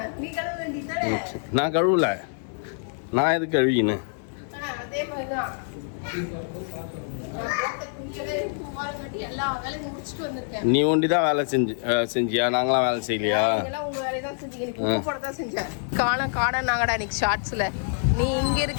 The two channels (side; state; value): right; silent; digital silence